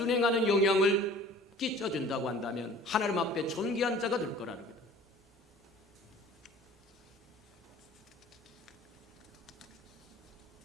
영향을 끼쳐준다고 한다면 하나님 앞에 존귀한 자가 될 거라는 거다.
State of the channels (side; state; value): both; normal; correlation 0.47